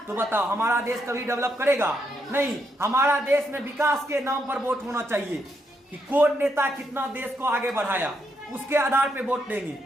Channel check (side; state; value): both; normal; correlation 0.79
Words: तो बताओ हमारा देश कभी डेवलप करेगा? नहीं। हमारा देश में विकास के नाम पर वोट होना चाहिए कि कौन नेता कितना देश को आगे बढ़ाया, उसके आधार पे वोट देंगे।